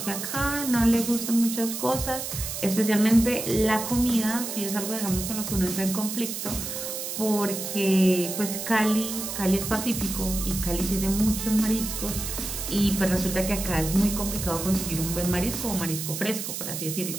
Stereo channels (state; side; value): noise; right; hiss, 5 dB below the sound